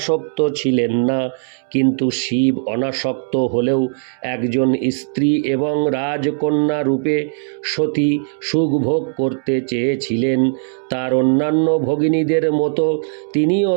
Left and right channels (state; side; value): silent; left; 67 dB below the other